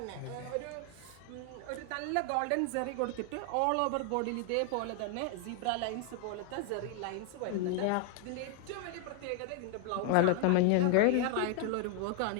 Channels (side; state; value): both; different; correlation 0.00